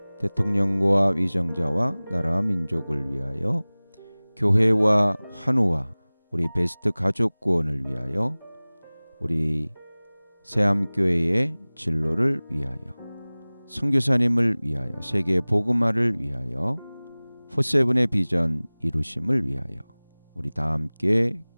대통령과 위정자와 나라 민족을 위하여 교회와 환우와 우리 베스트 가족 구원을 위하여 우리 새암교회의 진로를 위하여 선교사님을 위하여 세계 복음화를 위하여 포세븐의 비전 이루심을 위하여 우리 다 함께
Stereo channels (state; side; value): inverted; both; correlation -1.00